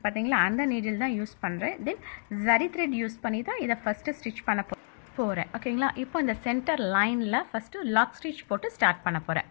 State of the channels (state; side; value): silent; right; digital silence